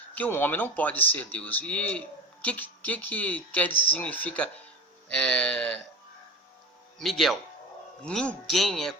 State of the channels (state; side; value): normal; both; correlation 0.32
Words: Que um homem não pode ser Deus. E o que quer dizer, significa Miguel? Ninguém é